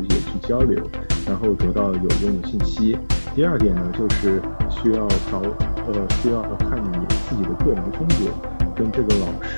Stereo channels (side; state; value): both; inverted; correlation -1.00